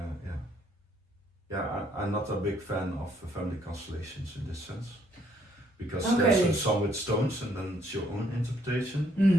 I'm not a big fan of family constellations in this sense, because there's some with stones and then it's your own interpretation.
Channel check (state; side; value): normal; both; correlation 0.68